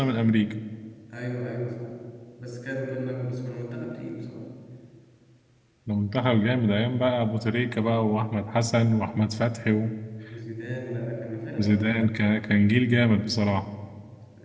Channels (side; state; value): both; identical; correlation 1.00